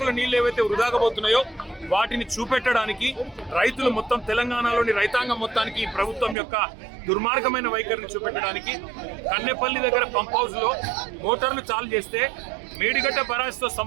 నీళ్లు ఏవైతే వృధాగా పోతున్నాయో వాటిని చూపెట్టడానికి రైతులు మొత్తం తెలంగాణలోని రైతాంగం మొత్తానికి ఈ ప్రభుత్వం యొక్క దుర్మార్గమైన వైఖరిని చూపెట్టడానికి కన్నెపల్లి దగ్గర పంప్ హౌస్ లో మోటార్లు చాలు చేస్తే మేడిగడ్డ బరాజ్తో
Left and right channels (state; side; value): drops out; left; at 6.4 s